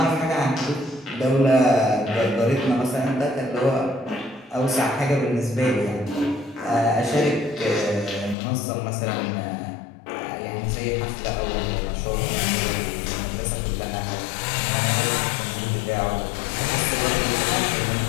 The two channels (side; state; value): right; drops out; at 8.3 s